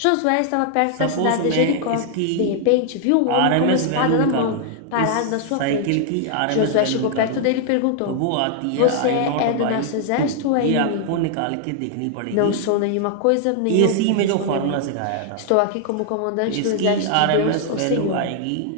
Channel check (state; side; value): different; both; correlation 0.00